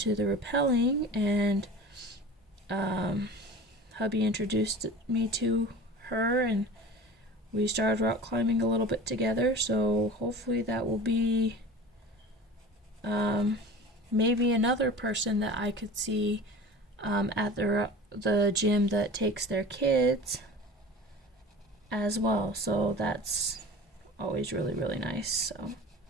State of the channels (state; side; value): normal; both; correlation 0.37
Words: the rappelling, and hubby introduced me to her, and we started rock climbing a little bit together. So hopefully that will be maybe another person that I could see at the gym that takes their kids as well. So that's always really, really nice. So